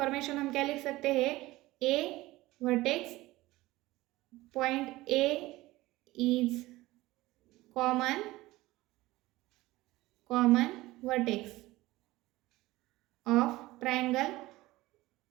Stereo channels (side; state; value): left; quieter; 18.6 dB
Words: हम क्या लिख सकते हैं, A vertex point A is common vertex of triangle,